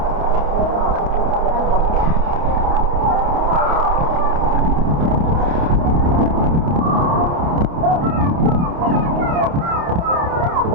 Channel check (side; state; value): left; late; 29 ms